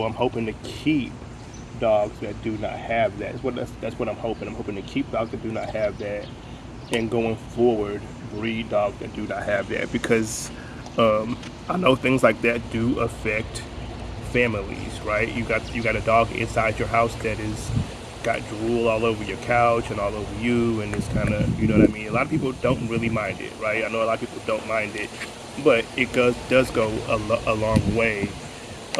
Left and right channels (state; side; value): identical; both; correlation 1.00